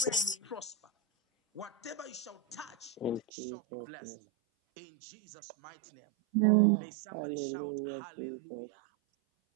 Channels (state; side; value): drops out; left; at 3.2 s